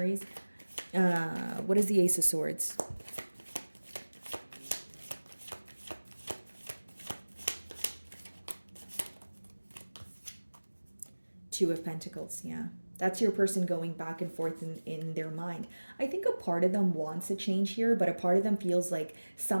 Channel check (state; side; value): inverted; both; correlation -1.00